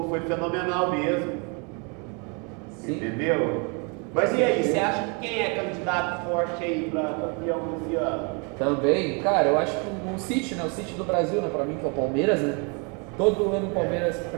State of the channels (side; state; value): left; quieter; 33.9 dB